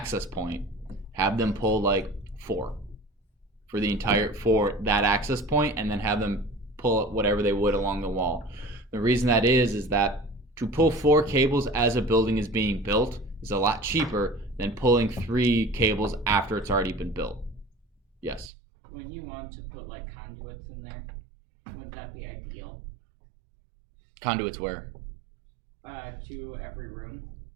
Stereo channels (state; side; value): drops out; left; at 18.5 s